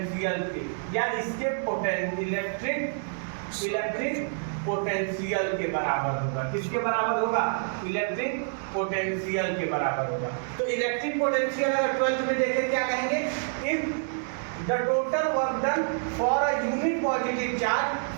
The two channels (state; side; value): silent; left; digital silence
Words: के, या इसके इलेक्ट्रिक पोटेंशियल के बराबर होगा। किसके बराबर होगा, इलेक्ट्रिक पोटेंशियल के बराबर होगा। तो इलेक्ट्रिक पोटेंशियल अगर 12th में देखें क्या कहेंगे, if the total work done for a unit positive charge